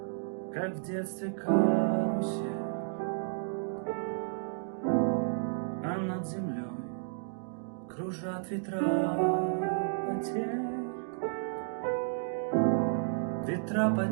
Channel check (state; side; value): silent; left; digital silence